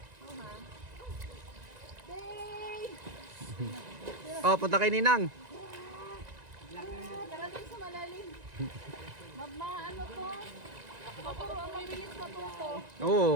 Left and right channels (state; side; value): late; left; 1.9 ms